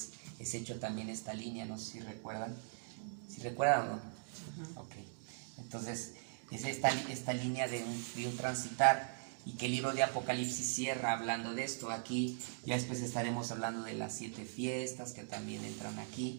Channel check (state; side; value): silent; left; digital silence